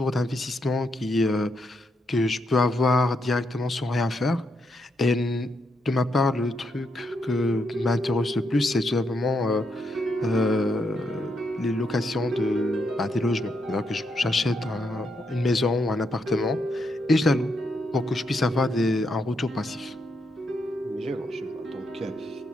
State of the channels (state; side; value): normal; both; correlation 0.79